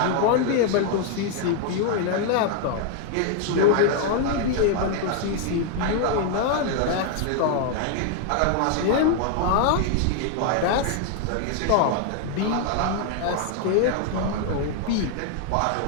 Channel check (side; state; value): both; different; correlation 0.00